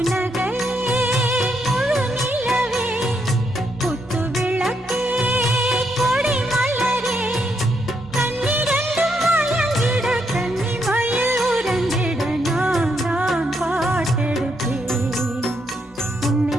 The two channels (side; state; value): both; normal; correlation 0.78